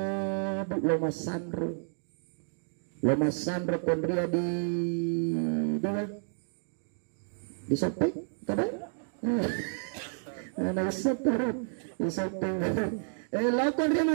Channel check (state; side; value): silent; left; digital silence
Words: loma sandro. Loma sandro kondria di sopeng kadang nah sopeng di sopeng lakon dia